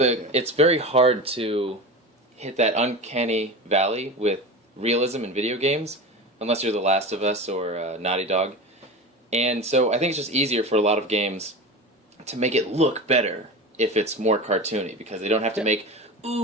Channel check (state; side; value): normal; both; correlation 0.28